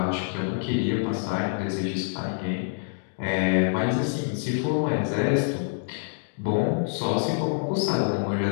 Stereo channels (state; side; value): silent; right; digital silence